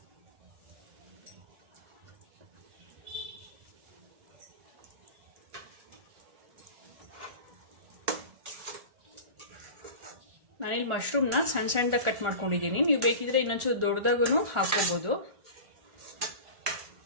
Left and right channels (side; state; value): left; late; 1.4 ms